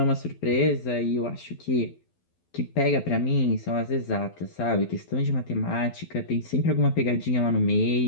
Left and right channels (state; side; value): late; right; 12 ms